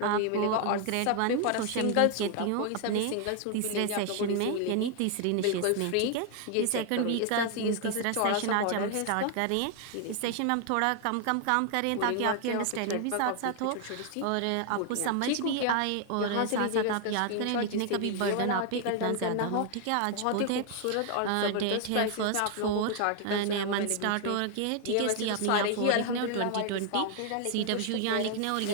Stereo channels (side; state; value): both; different; correlation 0.00